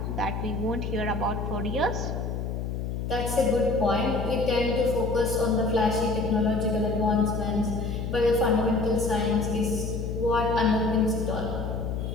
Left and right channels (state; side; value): noise; left; hum, 3 dB below the sound